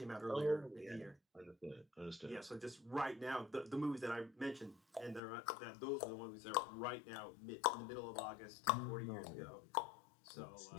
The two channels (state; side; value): drops out; right; at 5.2 s